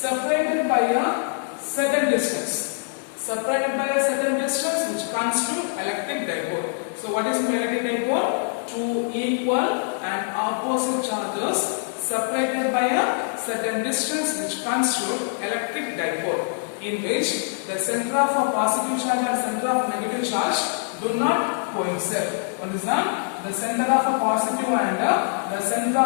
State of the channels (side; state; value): right; silent; digital silence